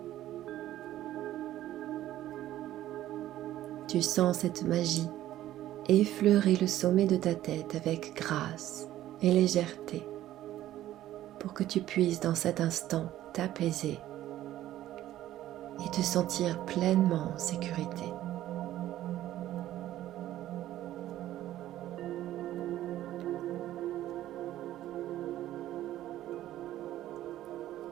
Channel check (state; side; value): quieter; left; 13.6 dB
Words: Tu sens cette magie effleurer le sommet de ta tête avec grâce et légèreté pour que tu puisses dans cet instant t'apaiser et te sentir pleinement en sécurité.